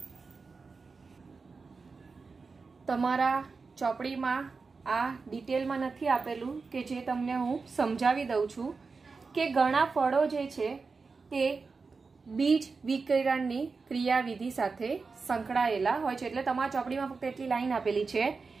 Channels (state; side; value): quieter; left; 4.5 dB